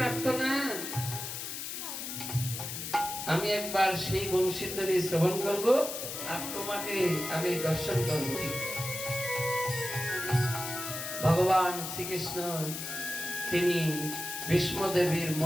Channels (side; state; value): left; noise; hiss, 6 dB below the sound